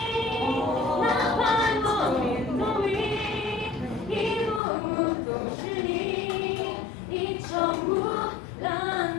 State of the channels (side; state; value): right; drops out; at 4.6 s